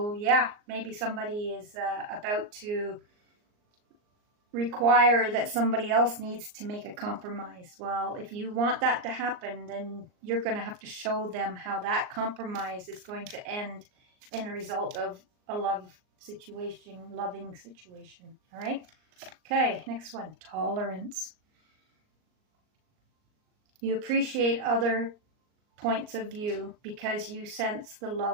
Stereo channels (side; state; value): left; late; 38 ms